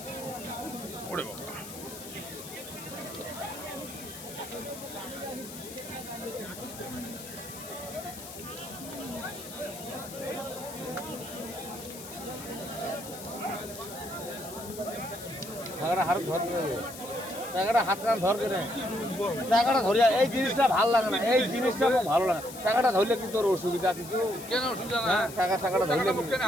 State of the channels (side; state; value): left; noise; hiss, 13 dB below the sound